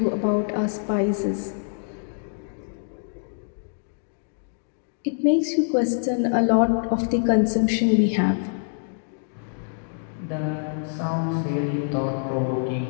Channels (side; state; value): right; silent; digital silence